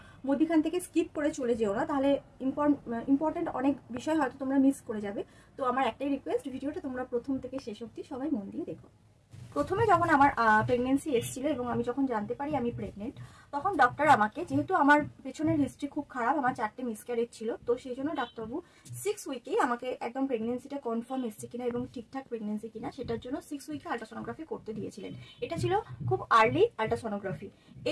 মধ্যখান থেকে স্কিপ করে চলে যেও না, তাহলে ইম্পর্টেন্ট অনেক বিষয় হয়তো তোমরা মিস করে যাবে। তো আমার একটাই রিকোয়েস্ট, ভিডিওটা তোমরা প্রথম থেকে শেষ অবধি সবাই মন দিয়ে দেখো। প্রথমে যখন আমার প্রেগনেন্সি এসেছিল এবং আমি যখন জানতে পারি আমি প্রেগনেন্ট, তখন ডক্টর আমাকে, যেহেতু আমার পেছনের হিস্ট্রি খুব খারাপ, আমার 4টে মিসক্যারেজ ছিল, তো সেই জন্য ডাক্তারবাবু 6 উইকেই আমাকে একদম প্রেগনেন্সিটা কনফার্ম এসছে কিনা এবং ঠিকঠাক প্রেগনেন্সি কিনা সেটার জন্য 6 উইকে আল্ট্রাসোনোগ্রাফি করতে দিয়েছিলেন। এটা ছিল খুব আর্লি আল্ট্রাসোনোগ্রাফি।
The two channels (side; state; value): both; identical; correlation 1.00